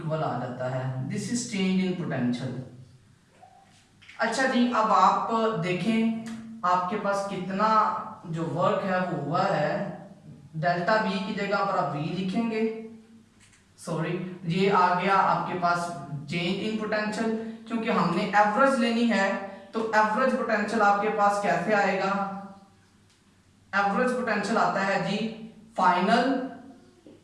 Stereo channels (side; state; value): both; identical; correlation 1.00